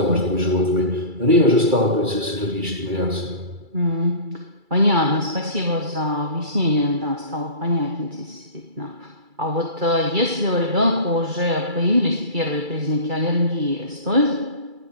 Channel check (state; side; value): late; left; 2.3 ms